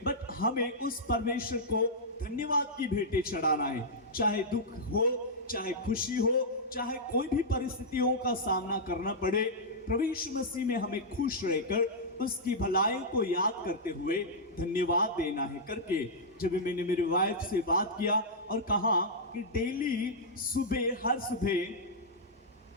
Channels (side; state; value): both; normal; correlation -0.09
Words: बट हमें उस परमेश्वर को धन्यवाद की भेंटें चढ़ाना है। चाहे दुख हो, चाहे खुशी हो, चाहे कोई भी परिस्थितियों का सामना करना पड़े, प्रभु यीशु मसीह में हमें खुश रहकर उसकी भलाई को याद करते हुए धन्यवाद देना है करके जब मैंने मेरी वाइफ से बात किया और कहा कि डेली सुबह, हर